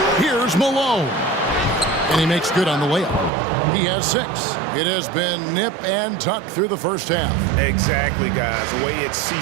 Here's Malone. And he makes good on the layup. He has 6. It has been nip and tuck through the first half. Exactly, guys. The way it's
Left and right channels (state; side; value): drops out; left; at 3.3 s